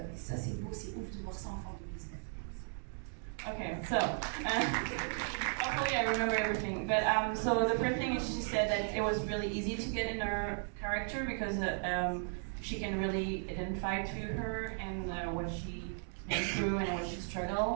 ça, c'est beau, c'est ouf de voir ça en fin 2019. Okay, so hopefully I remember everything. But so the first thing is she said that it was really easy to get in her character because she can really identify to her and what she went through and what she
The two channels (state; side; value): silent; left; 54 dB below the other